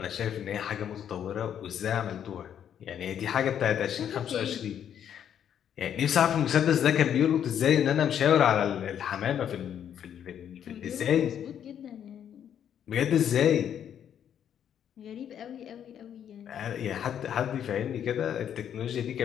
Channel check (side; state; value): right; quieter; 9.3 dB